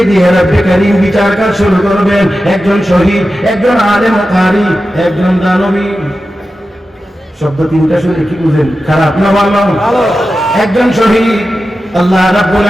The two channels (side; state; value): both; normal; correlation 0.93